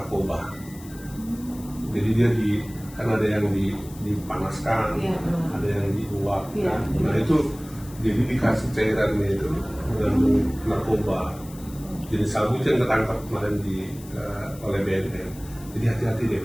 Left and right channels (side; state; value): left; noise; hiss, 20 dB below the sound